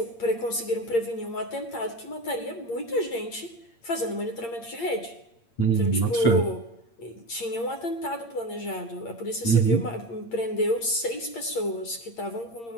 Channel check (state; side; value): late; right; 8.6 ms